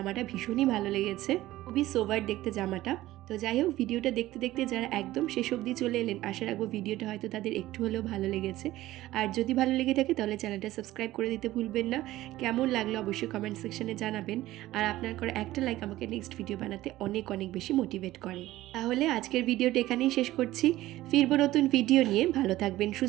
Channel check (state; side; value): quieter; left; 16.0 dB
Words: ভীষণই ভালো লেগেছে, খুবই সোভার দেখতে জামাটা। তো যাই হোক, ভিডিওটা দেখতে দেখতে যারা একদম শেষ অবধি চলে এলেন, আশা রাখবো ভিডিওটা হয়তো তাদের একটু হলেও ভালো লেগেছে। আর যদি ভালো লেগে থাকে তাহলে চ্যানেলটা সাবস্ক্রাইব করে দিতে ভুলবেন না। কেমন লাগলো অবশ্যই কমেন্ট সেকশনে জানাবেন। আর আপনার করে একটা লাইক আমাকে নেক্সট ভিডিও বানাতে অনেক অনেক বেশি মোটিভেট করে। তাহলে আজকের ভিডিওটা এখানেই শেষ করছি। ফিরবো নতুন ভিডিও নিয়ে। ভালো থাকবেন,